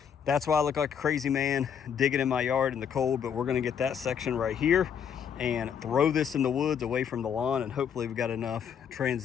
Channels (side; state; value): right; quieter; 7.8 dB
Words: that's why I look like a crazy man digging in my yard in the cold. But we're going to get that section right here and throw this in the woods away from the lawn, and hopefully we've got enough